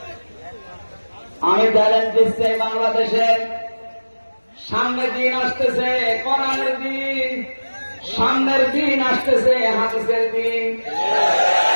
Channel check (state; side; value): inverted; both; correlation -1.00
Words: আমি চ্যালেঞ্জ দিচ্ছি বাংলাদেশে সামনের দিন আসতেছে, কোরআনের দিন, সামনের দিন আসতেছে হাদিসের দিন।